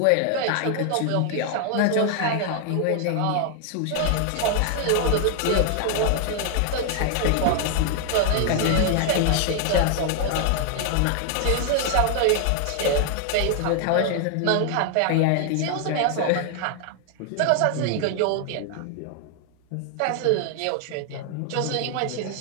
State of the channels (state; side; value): different; both; correlation 0.00